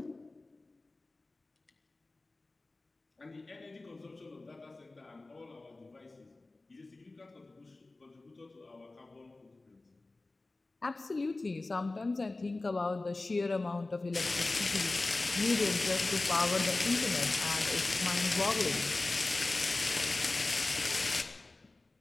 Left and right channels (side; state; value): right; quieter; 3.2 dB